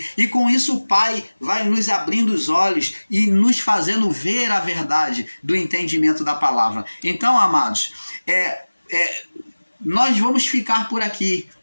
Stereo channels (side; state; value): both; inverted; correlation -1.00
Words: e com isso o Pai vai nos abrindo os olhos e nos fazendo ver a verdade do entendimento da palavra. Então, amados, nós vamos ficar por aqui,